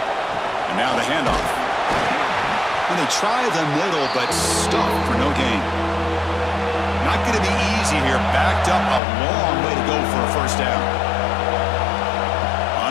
And now the handoff. And they try the middle, but stuffed for no gain. Not going to be easy here. Backed up a long way to go for a 1st down.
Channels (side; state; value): right; drops out; at 9.0 s